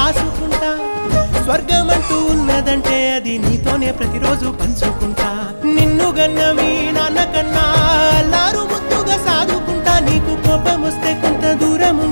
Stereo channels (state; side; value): inverted; both; correlation -1.00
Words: స్వర్గమంటూ ఉన్నదంటే అది నీతోనే ప్రతిరోజు పంచుకుంటా. నిన్ను గన్న మీ నాన్న కన్నా అల్లారు ముద్దుగా సాదుకుంటా. నీకు కోపం వస్తే కొంత దూరం